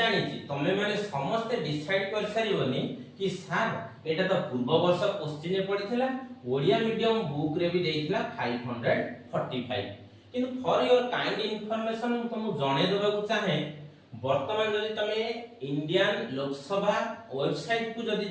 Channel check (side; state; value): both; identical; correlation 1.00